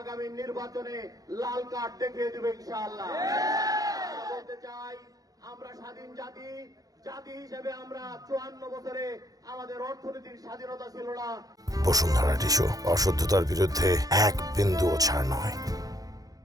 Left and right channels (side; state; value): left; late; 0.17 ms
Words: নির্বাচনে লাল কার্ড দেখিয়ে দেবে ইনশাআল্লাহ। বলতে চাই, আমরা স্বাধীন জাতি হিসেবে আমরা 54 বছরে আমাদের অর্থনৈতিক স্বাধীনতা ছিল না। বসুন্ধরা টিস্যু অশুদ্ধতার বিরুদ্ধে এক বিন্দুও ছাড় নয়।